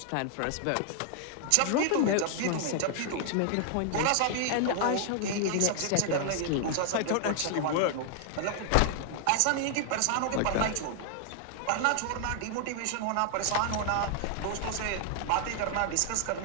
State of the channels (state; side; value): different; both; correlation 0.00